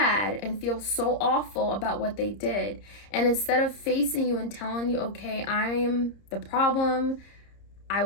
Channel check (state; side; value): late; right; 30 ms